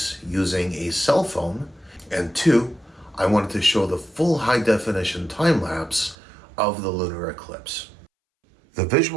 using a cell phone. And two, I wanted to show the full high-definition time-lapse of the lunar eclipse. The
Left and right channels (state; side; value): drops out; left; at 6.2 s